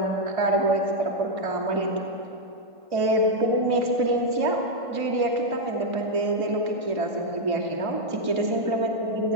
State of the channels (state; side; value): late; left; 1.5 ms